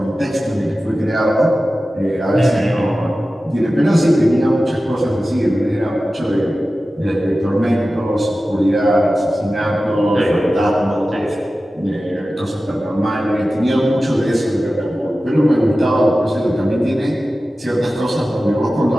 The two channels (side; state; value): both; normal; correlation 0.95